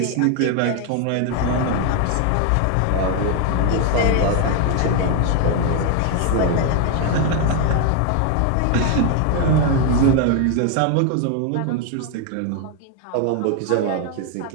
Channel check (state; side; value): different; both; correlation 0.01